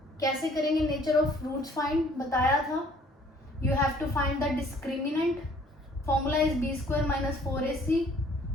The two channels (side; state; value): both; normal; correlation 0.58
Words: कैसे करेंगे nature of roots find, बताया था। You have to find the discriminant, formula is B square minus 4ac।